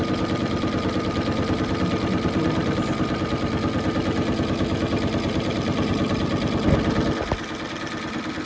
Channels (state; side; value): identical; both; correlation 1.00